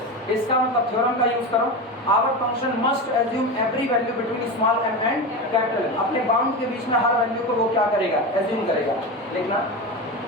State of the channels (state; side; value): normal; both; correlation 0.22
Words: इसका मतलब थ्योरम का यूज करो, our function must assume every value between small m and capital M. अपने बाउंड के बीच में हर वैल्यू को वो क्या करेगा, एज्यूम करेगा। लिखना